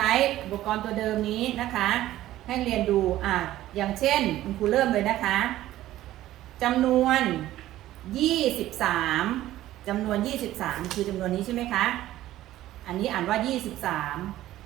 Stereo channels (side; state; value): left; quieter; 14.5 dB